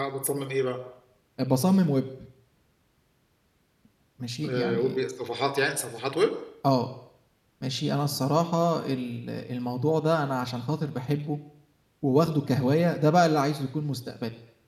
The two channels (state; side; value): identical; both; correlation 1.00